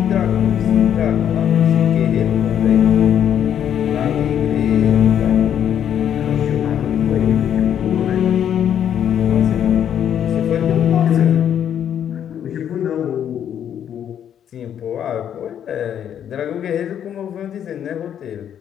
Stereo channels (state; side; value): quieter; right; 9.5 dB